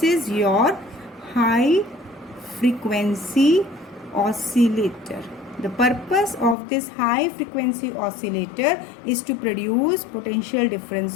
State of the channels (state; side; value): drops out; right; at 6.6 s